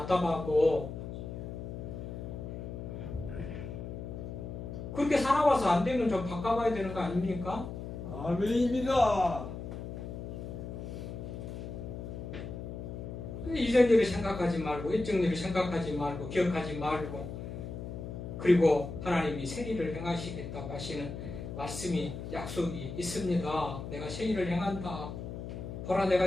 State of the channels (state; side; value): noise; left; hum, 8 dB below the sound